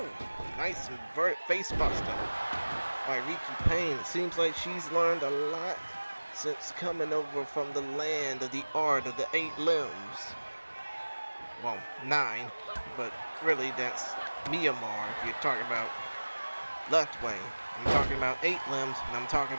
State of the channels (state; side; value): inverted; both; correlation -1.00